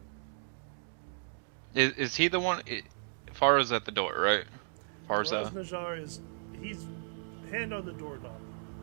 Is he the one? Farah's at the door, right? Faraz Farza. Najjar he's hand on the doorknob.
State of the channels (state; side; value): silent; left; digital silence